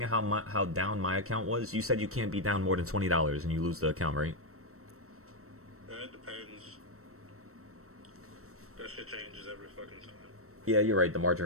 at how down my account was, you said you can't be down more than $20 and you lose the account, right? Yeah, it depends. That shit changes every fucking time. Yeah, you're right. The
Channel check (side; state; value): left; late; 0.63 ms